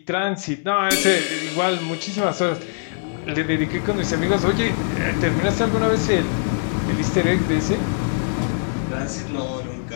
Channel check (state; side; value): silent; right; digital silence